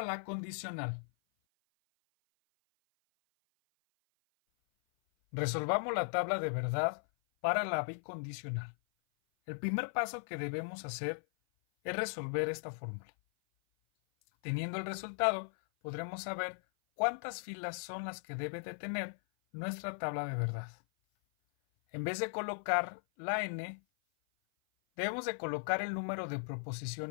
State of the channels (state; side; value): silent; right; 53 dB below the other